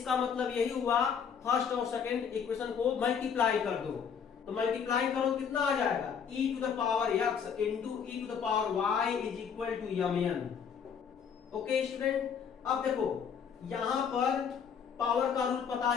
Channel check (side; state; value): right; quieter; 7.1 dB